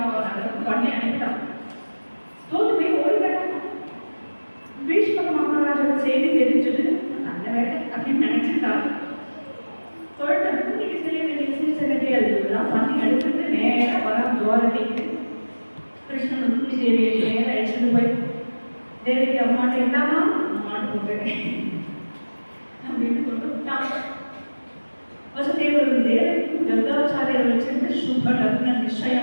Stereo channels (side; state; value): both; inverted; correlation -1.00